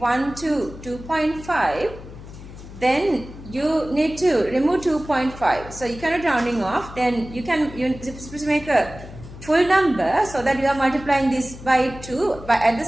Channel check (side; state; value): left; noise; hum, 15 dB below the sound